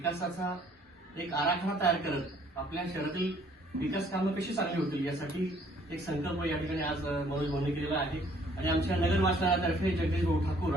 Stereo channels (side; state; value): both; normal; correlation 0.61